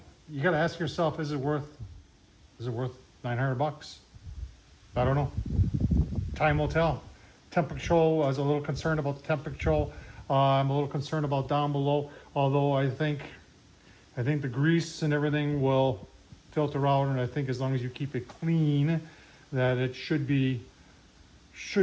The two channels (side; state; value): both; identical; correlation 1.00